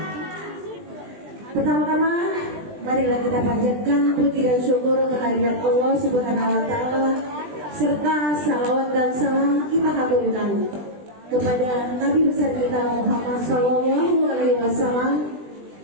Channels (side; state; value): left; late; 20 ms